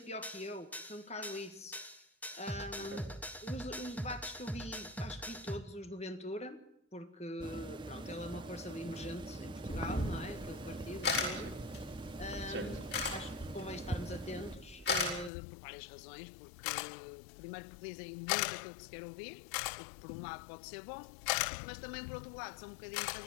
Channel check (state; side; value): drops out; right; at 15.3 s